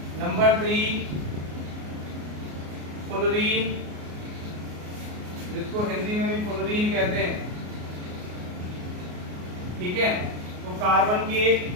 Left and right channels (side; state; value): left; late; 33 ms